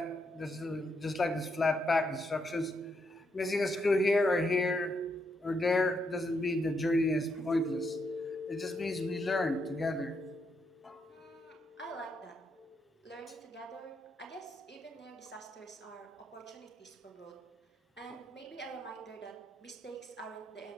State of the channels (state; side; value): normal; both; correlation 0.79